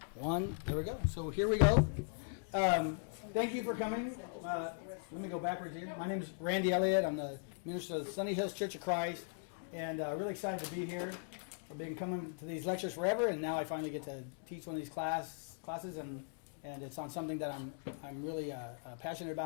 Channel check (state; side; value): silent; right; digital silence